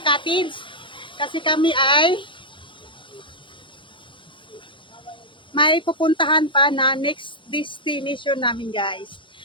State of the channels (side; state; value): right; late; 0.24 ms